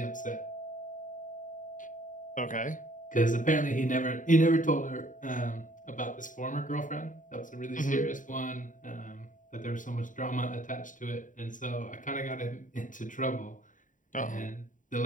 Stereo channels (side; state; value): right; late; 0.38 ms